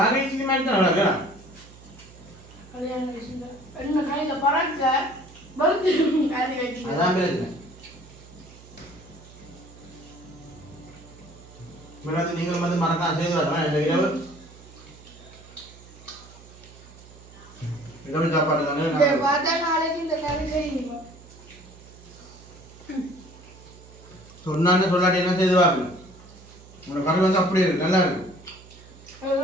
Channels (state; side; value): noise; right; hum, 21 dB below the sound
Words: மாதிரி தான் நடக்கிறேன் அதான் பேசுகிறேன் மேடம் நீங்களும் வந்து மறக்காம செய்து வரலாம் இந்த இரவு சாப்பாடு தானே சொன்னான்னு சொல்லாட்டி என்ன செய்து பார்க்கணும் உங்களோட கறி வந்து அப்படியே இருக்கு நல்லா இருக்கு